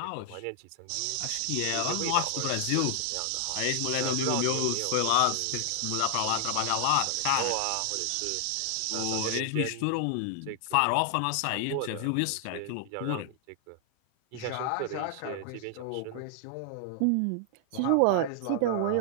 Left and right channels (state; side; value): different; both; correlation 0.00